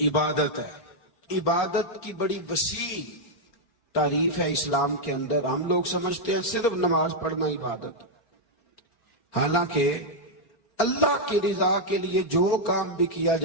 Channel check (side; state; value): right; late; 4.4 ms